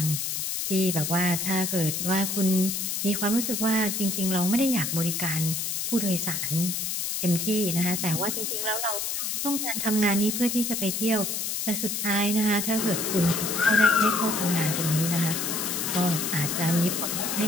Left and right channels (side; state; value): left; noise; hiss, 2 dB below the sound